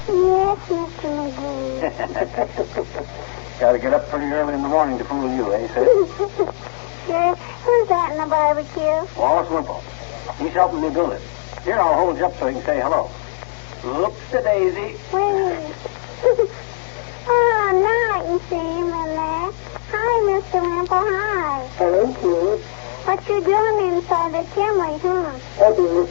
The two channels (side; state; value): right; silent; digital silence